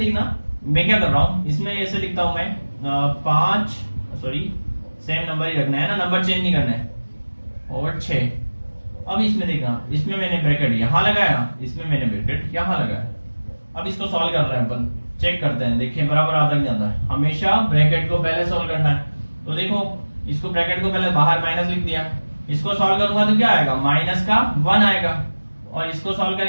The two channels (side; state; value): both; inverted; correlation -1.00